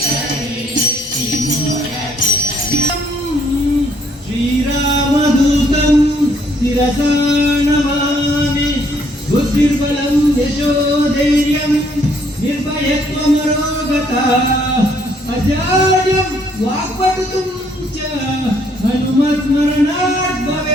श्रीरामदूतं शिरसा नमामि बुद्धिर्बलं यशोधैर्यं निर्भयत्वमरोगता अजाड्यं वाक्पटुतं च हनुमत्स्मरणात्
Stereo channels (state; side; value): normal; both; correlation 0.67